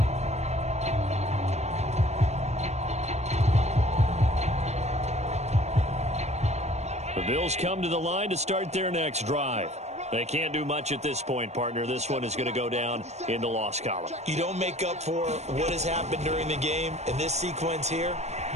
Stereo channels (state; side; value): late; left; 0.32 ms